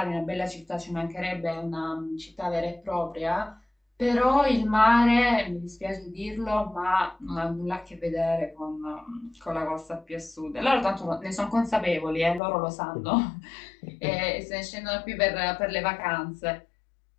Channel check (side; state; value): right; drops out; at 12.4 s